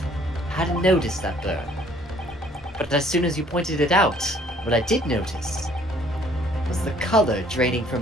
I hadn't noticed that burn. But as soon as you pointed it out, what I did notice was the color draining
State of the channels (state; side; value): normal; both; correlation 0.59